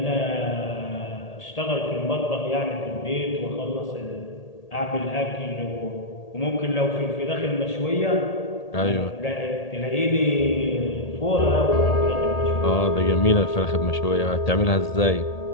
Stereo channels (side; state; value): right; late; 1.8 ms